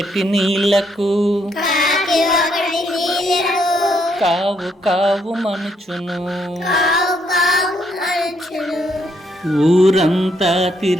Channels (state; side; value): normal; both; correlation 0.73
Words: నీళ్లకు కావు కావు మనుచును, ఊరంతా